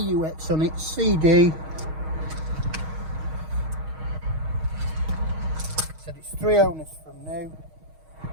on it, CD. Said it's 3 owners from new,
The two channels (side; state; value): left; late; 6.4 ms